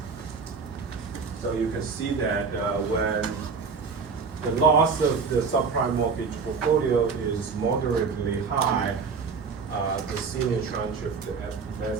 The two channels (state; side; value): quieter; left; 5.2 dB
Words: So you can see that when the loss of the subprime mortgage portfolio is moderately high, the senior tranche of the